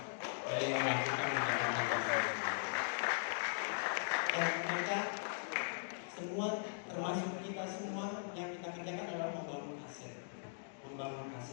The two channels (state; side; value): silent; right; digital silence